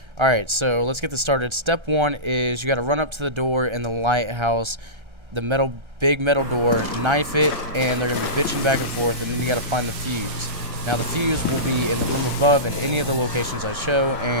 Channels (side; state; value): left; late; 1.3 ms